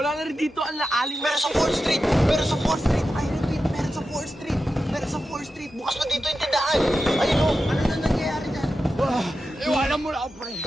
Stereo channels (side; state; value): both; normal; correlation 0.91